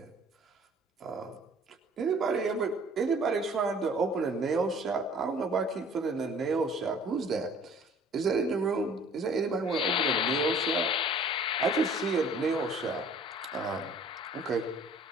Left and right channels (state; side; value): normal; both; correlation 0.52